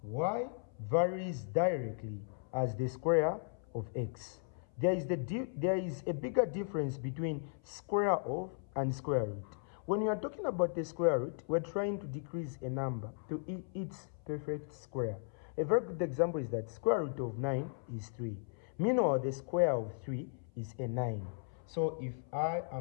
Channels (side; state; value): right; silent; 53 dB below the other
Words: y varies directly as the square of x. There is a bigger difference between square of and square root. When you are talking about the square root, we're trying to decrease a number to its perfect square. A very good example is that square root of 9 is 3. Meanwhile, the square of 3 is a 9. So if I